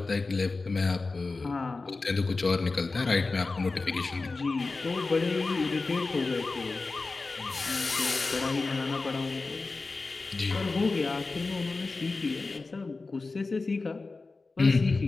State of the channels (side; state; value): right; quieter; 3.7 dB